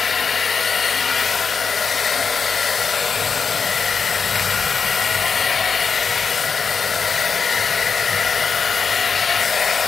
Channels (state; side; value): quieter; right; 5.6 dB